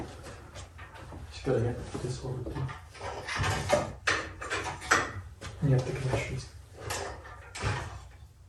Just gotta get this over too. And you have the connections.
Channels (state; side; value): identical; both; correlation 1.00